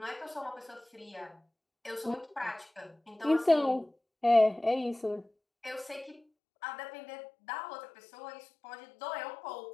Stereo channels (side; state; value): right; drops out; at 6.2 s